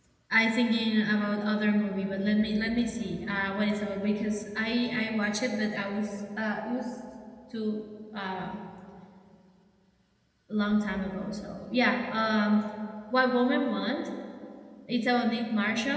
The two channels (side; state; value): both; identical; correlation 1.00